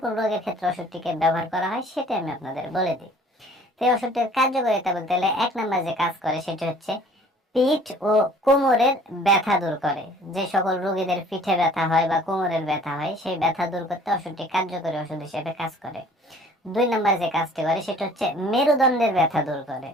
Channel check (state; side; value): normal; both; correlation 0.52